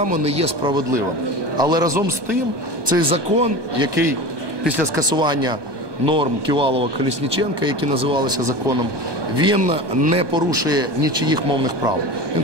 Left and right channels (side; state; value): left; late; 1.2 ms